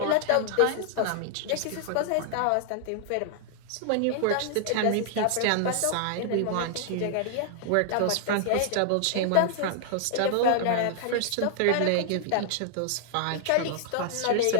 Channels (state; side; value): different; both; correlation 0.00